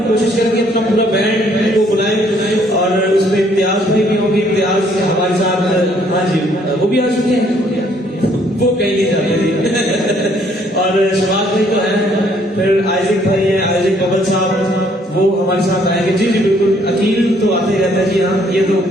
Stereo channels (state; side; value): normal; both; correlation 0.65